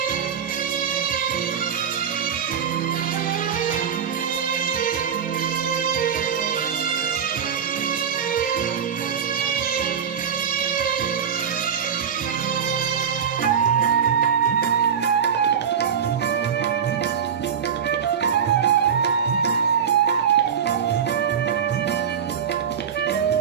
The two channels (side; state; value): left; quieter; 7.7 dB